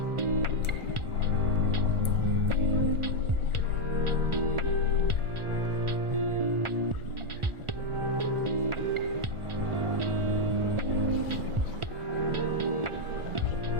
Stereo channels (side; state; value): left; late; 1.4 ms